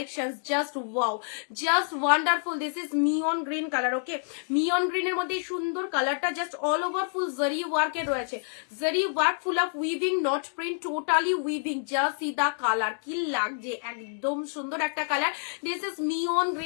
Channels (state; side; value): silent; right; digital silence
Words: just wow, just wonderful. This is মিয়ন গ্রিন কালার, ওকে। মিয়ন গ্রিনের মধ্যে সুন্দর কালারটা, জাস্ট অল ওভার ফুল জরি ওয়ার্কের রয়েছে, zari work, full of weaving, not print, totally weaving. Just see the colour, কি লাগছে, একদম সুন্দর একটা কালার। দিস ইজ মিয়ন